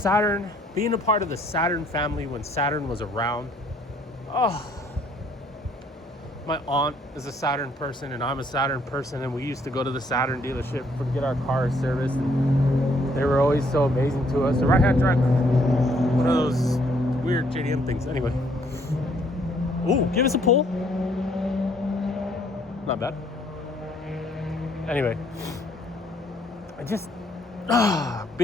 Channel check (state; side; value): normal; both; correlation 0.65